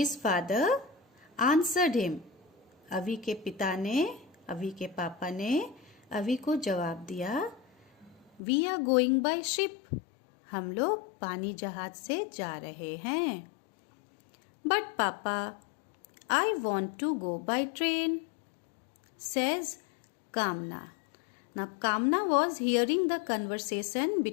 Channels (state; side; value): drops out; right; at 8.4 s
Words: father answered him. अवी के पिता ने, अवी के पापा ने अवी को जवाब दिया, we are going by ship. हम लोग पानी जहाज से जा रहे हैं. बट पापा, I want to go by train, says Kamna. Now Kamna was hearing the conversation